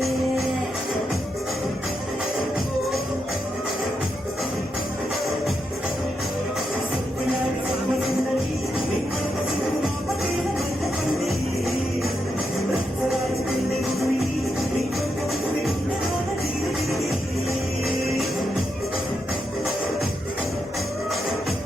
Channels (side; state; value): both; normal; correlation 0.83